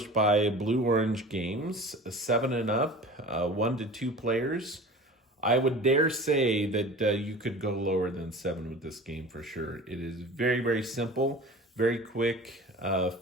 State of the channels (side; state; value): both; normal; correlation 0.39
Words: by Blue Orange Games, 7 and up, 1 to 2 players. I would dare say that you could go lower than 7 with this game for sure. It is very, very simple, very quick,